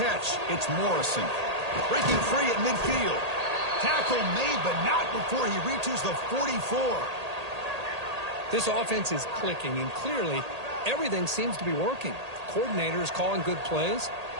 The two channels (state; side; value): late; left; 1.8 ms